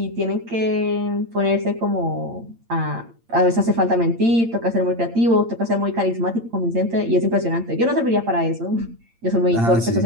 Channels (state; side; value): late; left; 8.8 ms